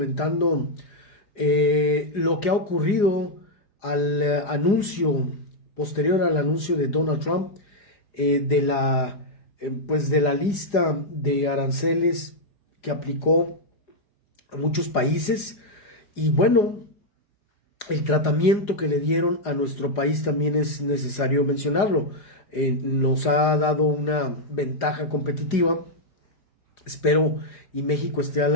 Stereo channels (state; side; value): late; right; 4.9 ms